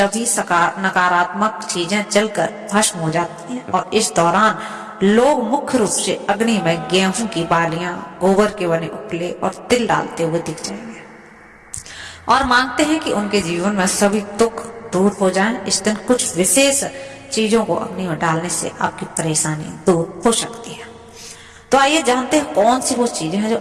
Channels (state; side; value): identical; both; correlation 1.00